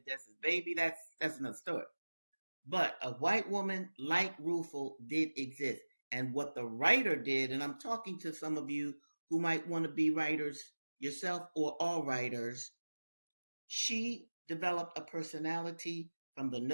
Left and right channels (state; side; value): inverted; both; correlation -1.00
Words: Dessa's baby, that's another story. But a white woman like Rufel did exist. And what the writer did, and I'm talking to some of you who might want to be writers yourself or all writers, she developed a personality from the